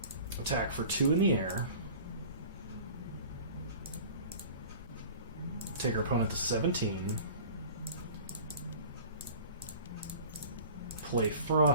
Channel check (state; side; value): inverted; both; correlation -0.42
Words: Attack for 2 in the air. Take our opponent to 17. Play